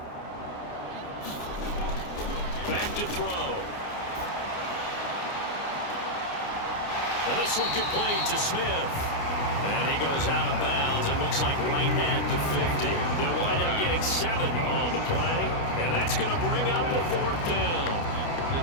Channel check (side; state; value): right; late; 29 ms